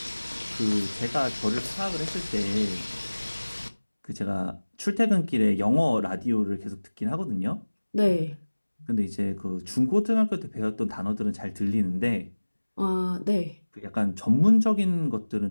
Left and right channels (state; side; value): inverted; both; correlation -1.00